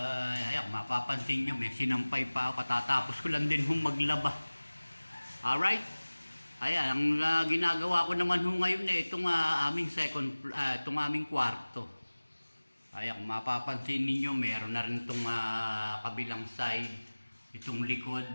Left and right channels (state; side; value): inverted; both; correlation -1.00